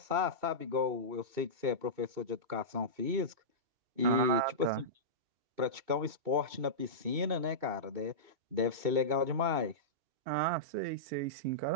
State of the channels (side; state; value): left; late; 2.7 ms